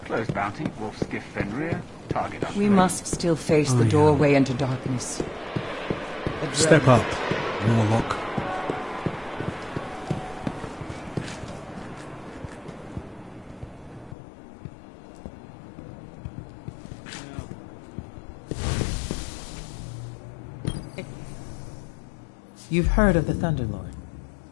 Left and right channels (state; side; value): drops out; right; at 14.2 s